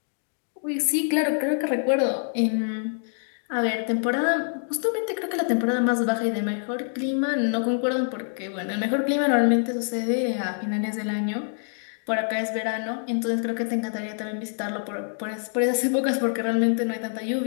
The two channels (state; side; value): silent; right; digital silence